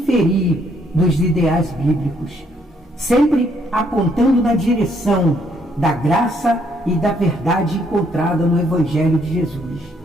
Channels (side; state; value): both; normal; correlation 0.69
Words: dos ideais bíblicos, sempre apontando na direção da graça e da verdade encontrada no Evangelho de Jesus.